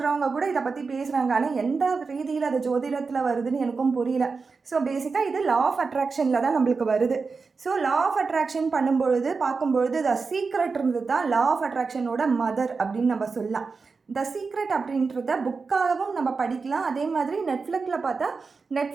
கூட இதை பற்றி பேசுகிறாங்க. ஆனால் எந்த ரீதியில் அது ஜோதிடத்தில் வருதுன்னு எனக்கும் புரியல. ஸோ பேசிக்காக இது லா ஆஃப் அட்ராக்ஷனில் தான் நம்மளுக்கு வருது. ஸோ லா ஆஃப் அட்ராக்ஷன் பண்ணும்பொழுது பார்க்கும்பொழுது த சீக்ரெட் இருந்தது தான் லா ஆஃப் அட்ராக்ஷனோட மதர் அப்படின்னு நம்ம சொல்லலாம். த சீக்ரெட் அப்படின்றத புக்காகவும் நம்ம படிக்கலாம். அதே மாதிரி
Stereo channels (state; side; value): quieter; left; 4.6 dB